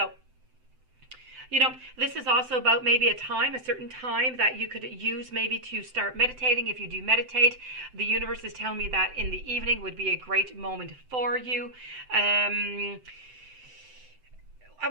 this is also about maybe a certain time that you could use maybe to start meditating. If you do meditate, the universe is telling me that in the evening would be a great moment for you. I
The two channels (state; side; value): late; left; 7.8 ms